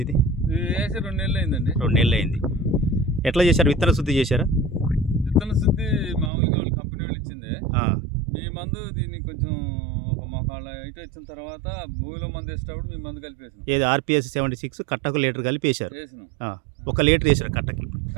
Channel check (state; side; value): drops out; left; at 6.3 s